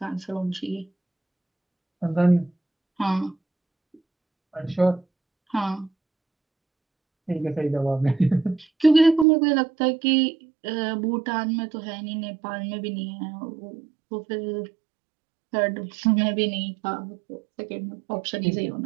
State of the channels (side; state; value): left; drops out; at 9.2 s